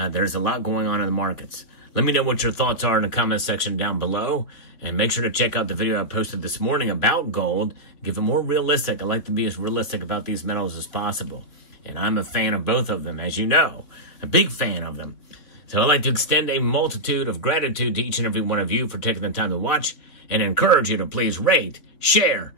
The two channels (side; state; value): right; late; 3.5 ms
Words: a lot going on in the markets. Let me know what your thoughts are in the comment section down below, and make sure to check out the video I posted this morning about gold. Give it more realistic. I like to be as realistic about these metals as possible. And I'm a fan of both of them, as you know, a big fan of them. So I'd like to extend a multitude of gratitude to each and every one of you for taking the time to watch, and encourage you to please rate, share,